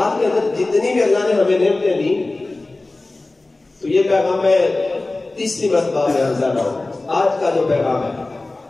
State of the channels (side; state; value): right; quieter; 3.1 dB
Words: کے اندر جتنی بھی اللہ نے ہمیں نعمتیں دی، تو یہ پیغام میں تیسری مرتبہ میں حاضر ہوں. آج کا جو پیغام ہے،